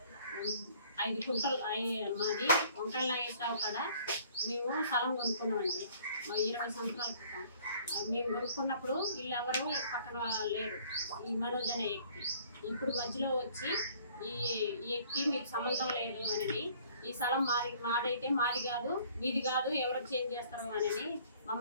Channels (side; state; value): both; inverted; correlation -0.56